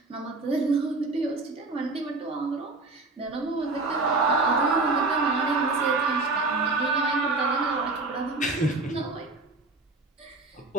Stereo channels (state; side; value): quieter; left; 3.4 dB